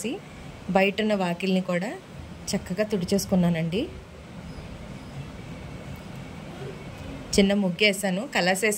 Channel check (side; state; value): both; identical; correlation 1.00